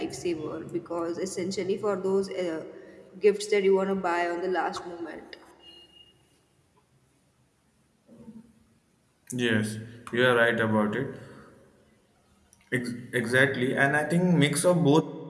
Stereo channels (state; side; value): identical; both; correlation 1.00